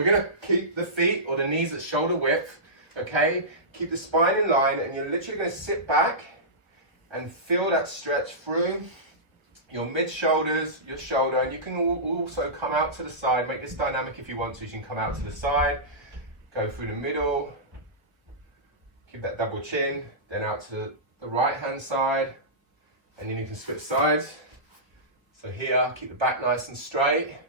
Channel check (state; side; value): late; left; 1.1 ms